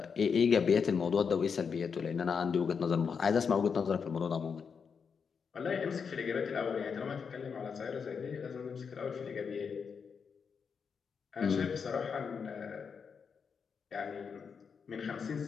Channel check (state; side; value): quieter; right; 6.1 dB